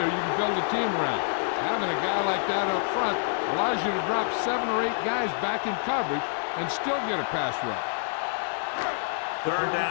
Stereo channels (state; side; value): silent; right; digital silence